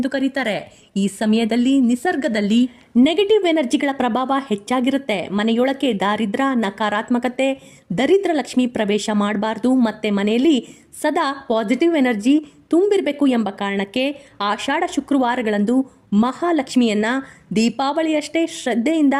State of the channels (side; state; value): both; identical; correlation 1.00